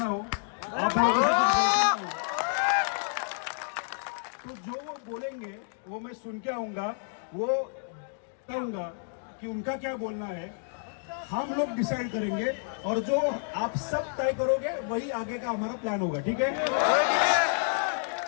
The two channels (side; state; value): right; silent; 58 dB below the other